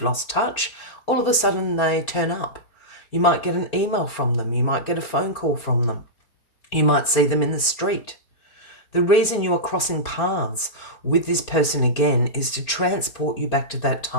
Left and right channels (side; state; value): right; late; 4.3 ms